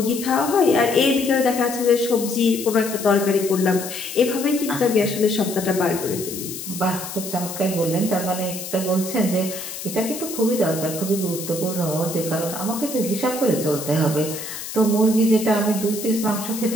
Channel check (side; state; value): left; noise; hiss, 9 dB below the sound